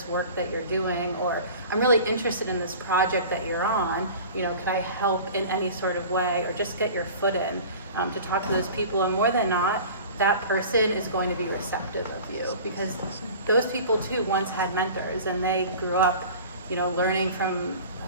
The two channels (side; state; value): both; inverted; correlation -0.40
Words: work that you're doing, or I'm really interested in this project that you're on, you know, could I help in any sort of way, or just get your foot in, to talk to those people. And more than not, that person is going to be receptive of you, because those people too once had mentors, and they grew up, you know, learning from